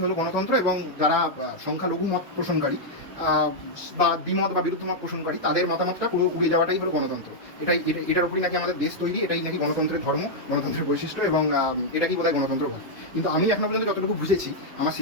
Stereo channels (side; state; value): both; normal; correlation -0.03